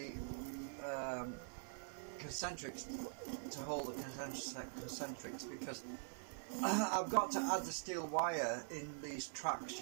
concentrics, to hold the concentrics, because I've got to add the steel wire in these tracks,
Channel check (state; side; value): silent; left; digital silence